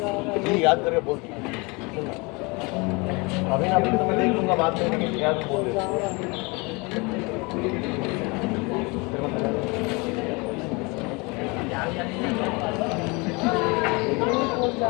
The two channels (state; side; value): quieter; right; 27.6 dB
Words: याद करके बोल अभी ना तो मैं देख लूंगा बात करने के याद बोल